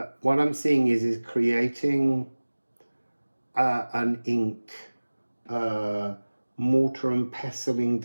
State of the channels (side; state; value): both; inverted; correlation -1.00